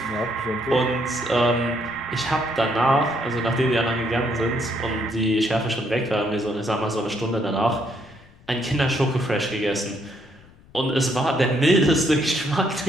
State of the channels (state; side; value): noise; left; rumble, 26 dB below the sound